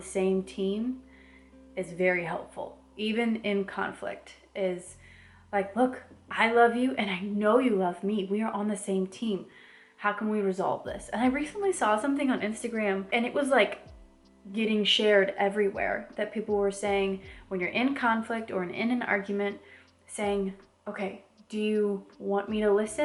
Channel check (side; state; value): both; identical; correlation 1.00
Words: same team is very helpful. Even in conflict is like, look, I love you and I know you love me. We are on the same team. How can we resolve this? And I recently saw something on Instagram and it was like getting shared everywhere that people were saying when you're in conflict or in an argument, saying, okay, do you want me to